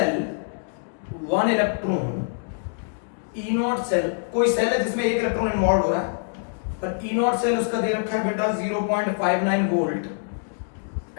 1 electron E naught cell, कोई सेल है जिसमें एक इलेक्ट्रॉन इन्वॉल्व हो रहा है, और ई नॉट सेल उसका दे रखा है बेटा 0.59 वोल्ट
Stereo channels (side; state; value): right; silent; digital silence